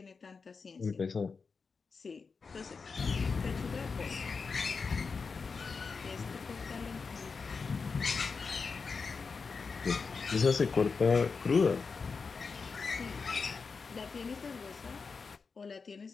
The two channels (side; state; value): right; quieter; 4.9 dB